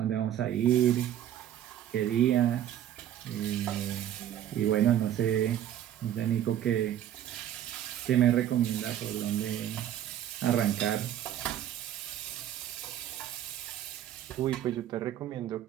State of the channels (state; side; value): quieter; left; 11.2 dB